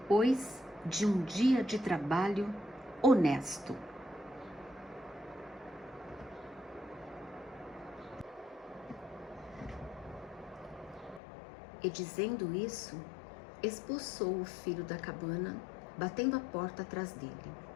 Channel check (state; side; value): drops out; right; at 11.2 s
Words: de um dia de trabalho honesto. E dizendo isso, expulsou o filho da cabana, batendo a porta atrás dele.